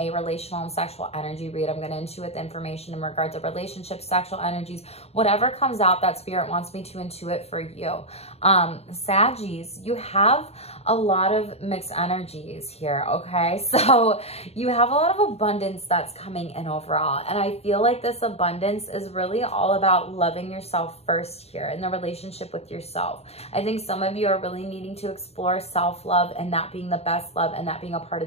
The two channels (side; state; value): right; late; 0.30 ms